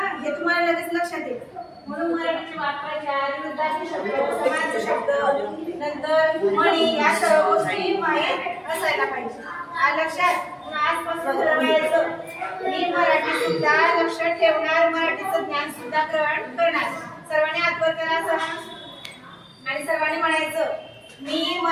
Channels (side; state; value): both; identical; correlation 1.00